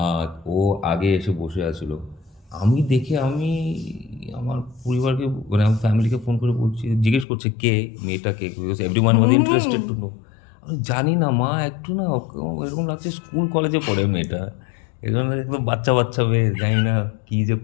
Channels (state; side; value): drops out; right; at 7.2 s